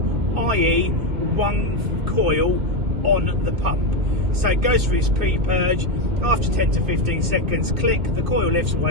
i.e. one coil on the pump. So it goes through its pre-purge, after 10 to 15 seconds, click, the coil lifts,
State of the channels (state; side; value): late; left; 2.5 ms